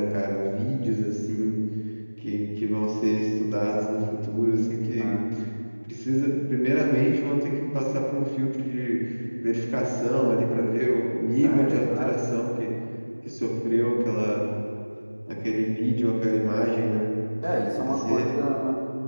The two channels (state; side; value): inverted; both; correlation -1.00